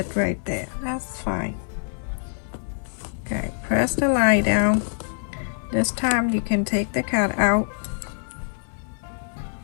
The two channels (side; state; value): right; silent; 57 dB below the other